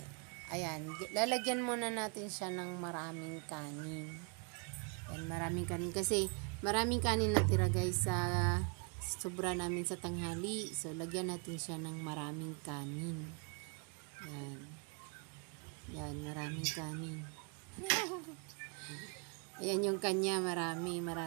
ayan, lalagyan muna natin siya ng maraming kanin. Yan, maraming kanin. Kasi, maraming kanin natira guys sa sobra namin sa tanghali. So, lagyan natin siya ng maraming kanin. Yan. Yan, maraming kanin. Ayan yung kanya, maraming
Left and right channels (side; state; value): left; quieter; 37.0 dB